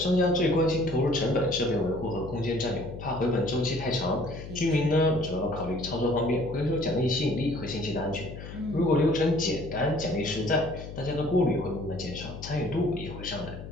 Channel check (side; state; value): left; noise; hum, 11 dB below the sound